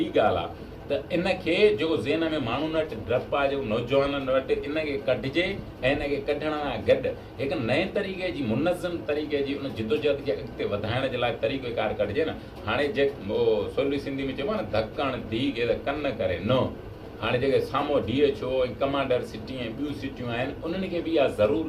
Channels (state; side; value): identical; both; correlation 1.00